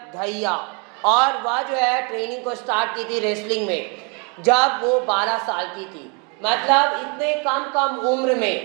Dahiya और वह जो है ट्रेनिंग को स्टार्ट की थी रेसलिंग में जब वो 12 साल की थी। मतलब इतने कम उम्र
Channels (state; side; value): quieter; left; 34.1 dB